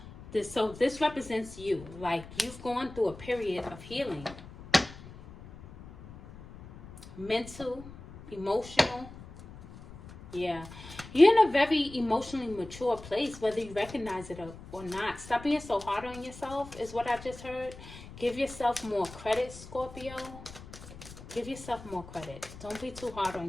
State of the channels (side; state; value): left; noise; rumble, 16 dB below the sound